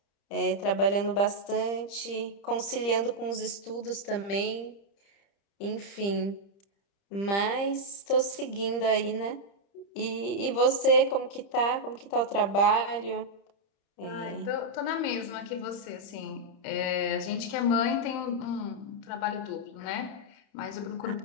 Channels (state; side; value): late; right; 30 ms